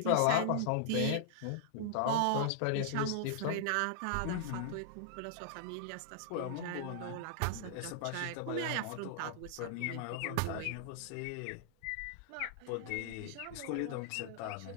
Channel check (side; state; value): both; different; correlation -0.01